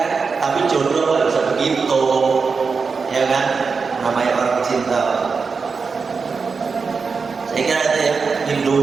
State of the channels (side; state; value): left; quieter; 5.0 dB